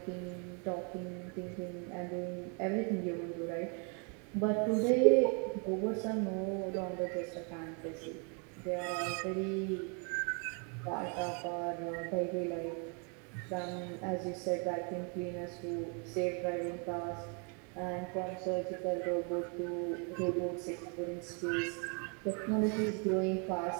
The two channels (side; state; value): left; quieter; 36.8 dB